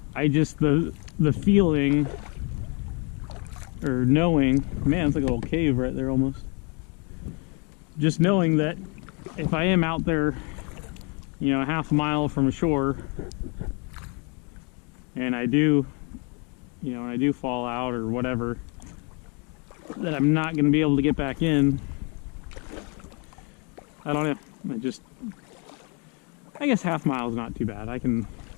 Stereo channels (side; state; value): right; quieter; 34.1 dB